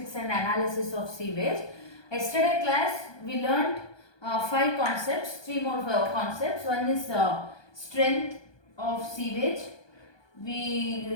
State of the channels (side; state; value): right; late; 1.2 ms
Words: and analysis of sewage. Yesterday class, we learned five concepts, three more concepts. One is strength of sewage.